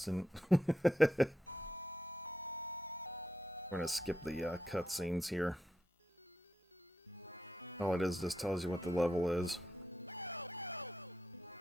We're gonna skip the cutscenes here. All it is just tells you what the level is.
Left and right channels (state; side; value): normal; both; correlation 0.85